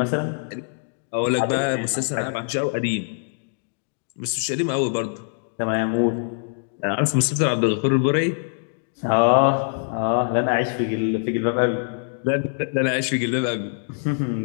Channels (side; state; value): right; silent; digital silence